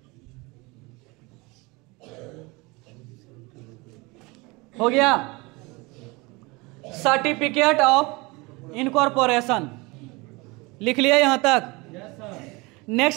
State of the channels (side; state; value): left; quieter; 25.2 dB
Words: हो गया, सर्टिफिकेट ऑफ इनकॉर्पोरेशन लिख लिया यहां तक।